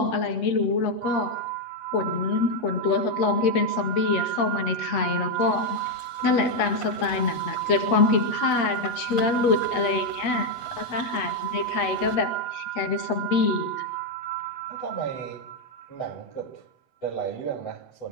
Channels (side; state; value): right; late; 8.1 ms